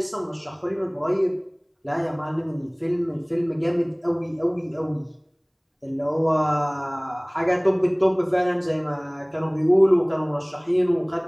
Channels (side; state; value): both; identical; correlation 1.00